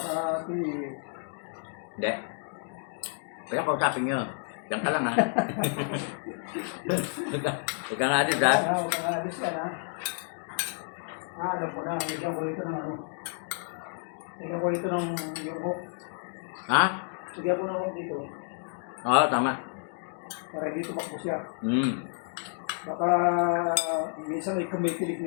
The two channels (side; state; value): right; silent; 57 dB below the other